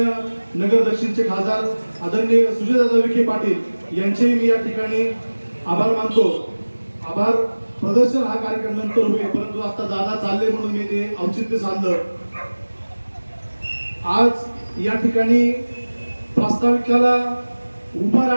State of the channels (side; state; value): both; inverted; correlation -1.00